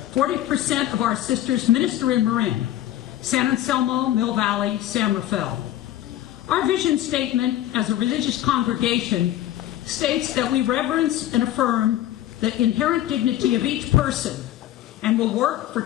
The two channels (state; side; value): quieter; right; 13.2 dB